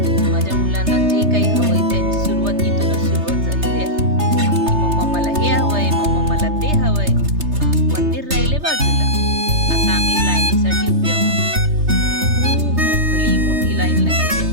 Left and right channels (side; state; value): left; late; 3.3 ms